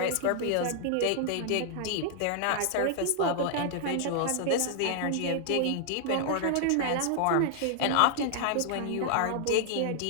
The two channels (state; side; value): different; both; correlation -0.01